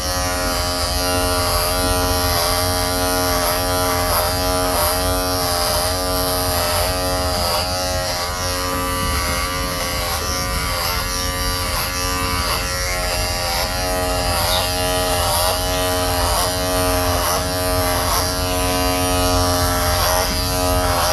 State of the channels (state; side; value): identical; both; correlation 1.00